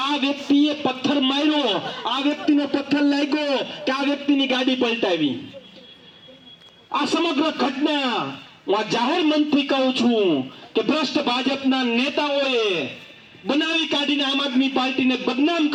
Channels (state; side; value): identical; both; correlation 1.00